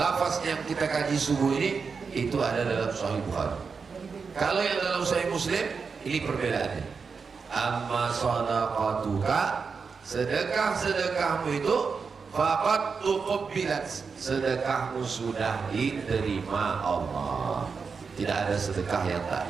yang kita kaji subuh ini itu ada dalam Sahih Bukhari. Kalau yang dalam Sahih Muslim ini perbedaannya. Amma sadaqatuka, sedekah-sedekahmu itu faqad tuqabbilat, sedekahmu sudah diterima Allah. Tidak ada sedekah yang tak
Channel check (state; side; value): quieter; left; 5.3 dB